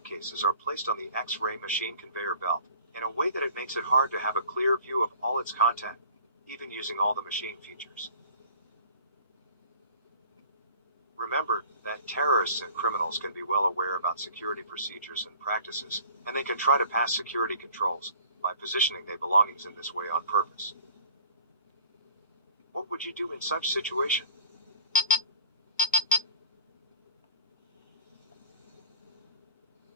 are placed on the X-ray machine conveyor belt, in a way that it makes it hard to have a clear view of all its content, even using all the machine features. Remember that terrorists and criminals can be well aware about security procedures and practices, and they can try to pass security controls by positioning their belongings in this way on purpose. What would you do in such situation?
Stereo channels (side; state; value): both; inverted; correlation -0.48